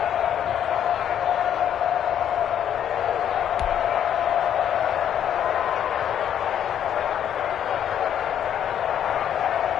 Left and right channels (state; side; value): quieter; right; 9.7 dB